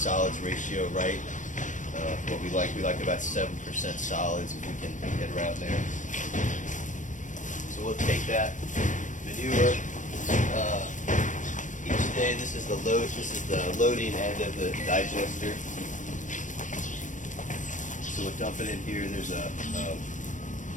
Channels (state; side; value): late; right; 0.37 ms